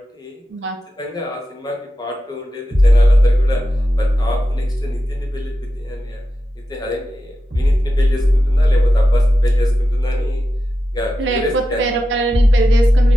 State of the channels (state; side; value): normal; both; correlation 0.91